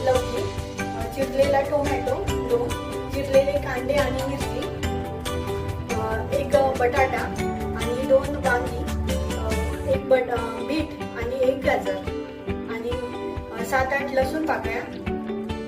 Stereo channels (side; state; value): both; identical; correlation 1.00